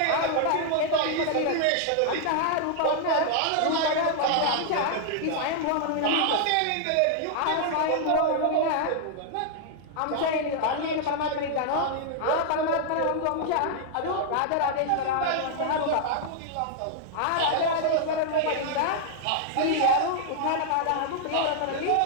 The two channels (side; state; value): both; different; correlation -0.01